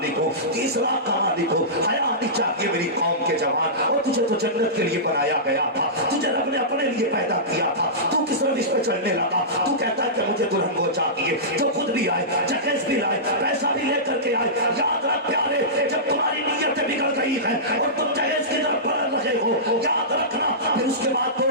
हो, 30 लाख का मालिक हो। हया आनी चाहिए मेरी कौम के जवान। और तुझे तो जन्नत के लिए बनाया गया था, तुझे रब ने अपने लिए पैदा किया था, तू किस रविश पे चलने लगा? तू कहता है कि मुझे दुल्हन वो चाहिए जो खुद भी आए, जहेज भी लाए, पैसा भी लेकर के आए। याद रख प्यारे, जब तुम्हारी नीयत बिगड़ गई है और तुम जहेज की तरफ बढ़ रहे हो, याद रखना, फिर उसके बाद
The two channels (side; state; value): both; normal; correlation -0.18